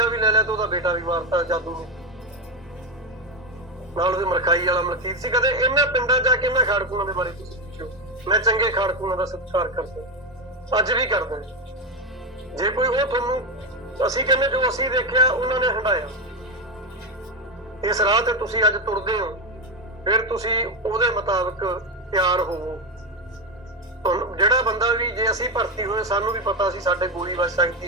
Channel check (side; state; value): both; normal; correlation 0.11